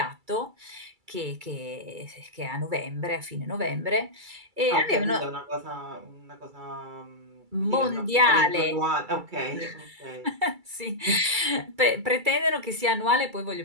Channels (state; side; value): late; left; 2.3 ms